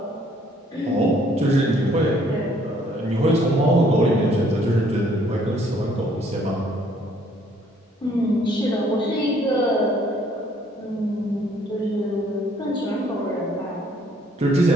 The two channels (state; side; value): normal; both; correlation 0.63